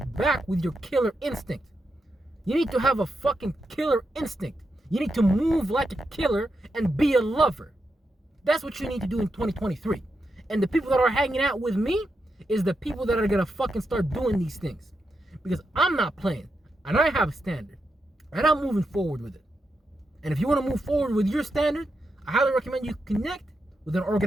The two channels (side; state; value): both; normal; correlation 0.85